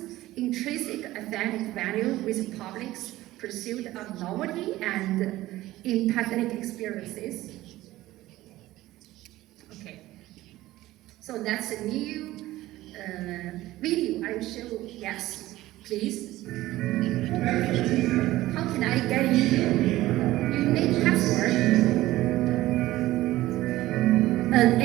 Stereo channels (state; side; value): quieter; left; 16.5 dB